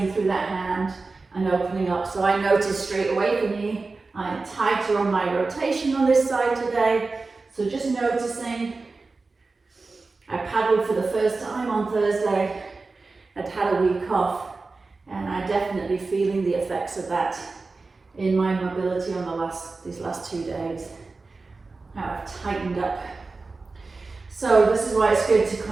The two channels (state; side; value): quieter; left; 3.8 dB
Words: through that hand and opening up. So I notice straight away for me, I'm tighter on my rotation on this side today. So just noticing. I paddled for the first time on Thursday. I'd had a week off, and I'm definitely feeling the effects of that in my mobility on these last 2 days. How I've tightened up. So this is why it's good to